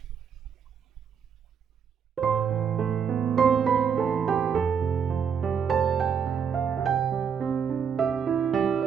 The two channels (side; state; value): left; quieter; 7.1 dB